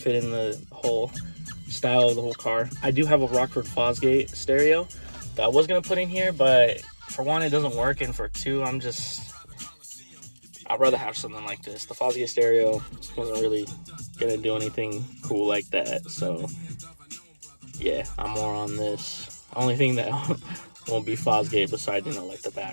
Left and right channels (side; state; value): both; inverted; correlation -1.00